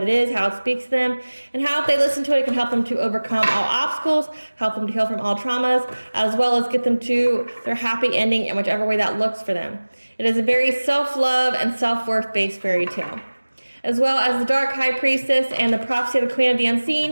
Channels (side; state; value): both; inverted; correlation -1.00